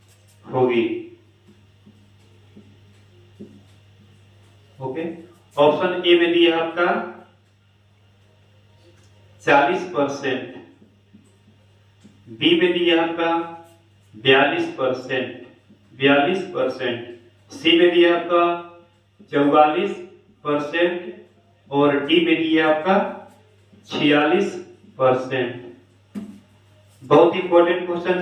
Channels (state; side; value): identical; both; correlation 1.00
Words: होगी। ओके, ऑप्शन ए में दिया आपका 40%, बी में दिया आपका 42%, सी में दिया आपका 44% और डी में दिया आपका 46%। बहुत इंपॉर्टेंट क्वेश्चन